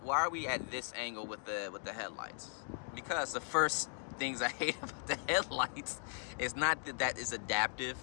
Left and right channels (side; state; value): right; silent; 52 dB below the other